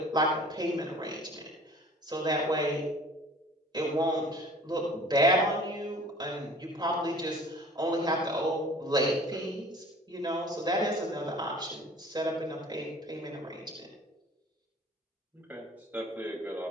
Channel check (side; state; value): both; normal; correlation 0.48